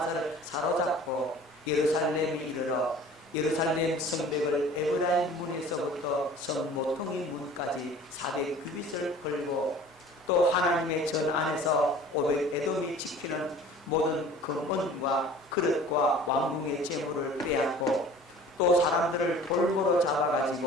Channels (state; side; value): normal; both; correlation 0.46